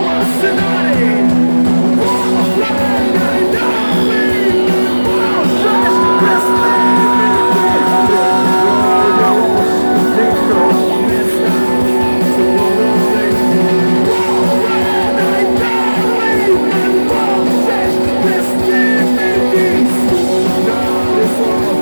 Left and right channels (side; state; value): both; inverted; correlation -1.00